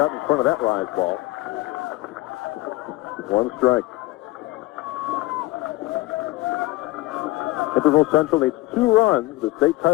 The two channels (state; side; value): quieter; right; 19.2 dB